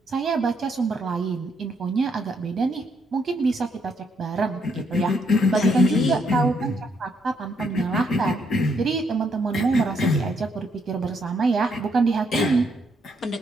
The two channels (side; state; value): both; normal; correlation 0.74